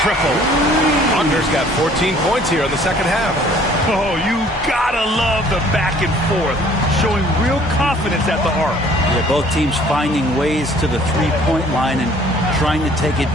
triple. Wagner's got 14 points here in the second half. Oh, you gotta love the back and forth. Showing real confidence at the arc. Yeah, both teams finding ways to the three-point line and trying to take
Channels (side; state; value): both; normal; correlation 0.56